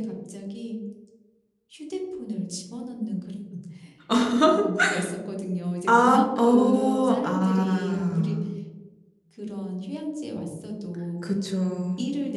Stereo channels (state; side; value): identical; both; correlation 1.00